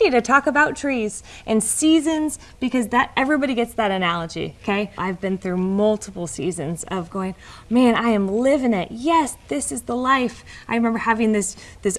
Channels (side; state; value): both; identical; correlation 1.00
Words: to talk about trees and seasons, because that everybody gets that analogy, okay? I've been through multiple seasons of going, man, I am living it. Yes, this is the life. I remember having this